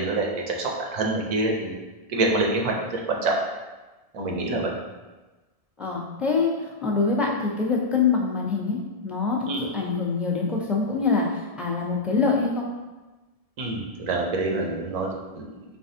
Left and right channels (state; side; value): late; left; 1.7 ms